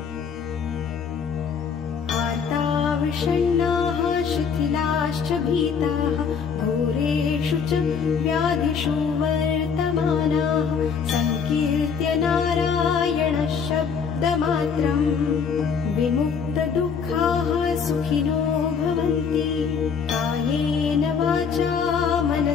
आर्ताविषण्णाः शिथिलाश्च भीताः घोरेषु च व्याधिषु वर्तमानाः संकीर्त्य नारायणः शब्दमात्रं विमुक्तदुःखाः सुखिनो भवन्ति कायेन वाचा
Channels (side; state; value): right; quieter; 6.3 dB